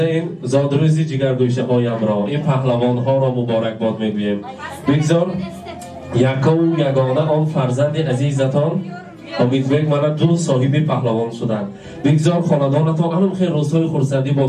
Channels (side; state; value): both; identical; correlation 1.00